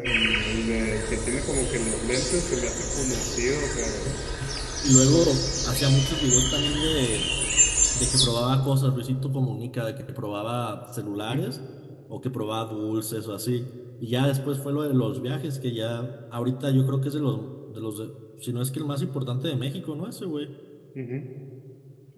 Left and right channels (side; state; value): both; identical; correlation 1.00